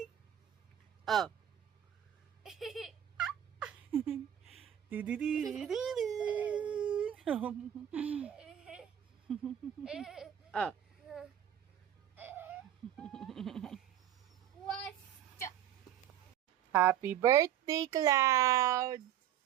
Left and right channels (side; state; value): left; quieter; 10.6 dB